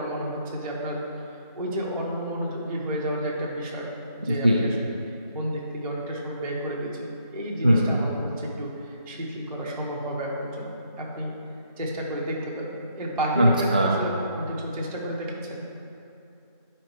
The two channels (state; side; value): inverted; both; correlation -0.70